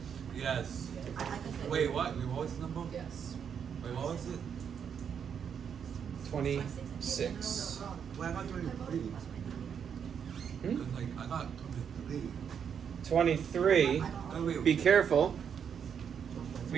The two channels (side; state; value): left; quieter; 7.6 dB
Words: Yes. I can fail. Wait, what? Wait, what was the number? Yes. Wait, what was it? 26. Wait, I got 23. Hmm? Cause like I got 23. 23. Oh, wait. Be careful.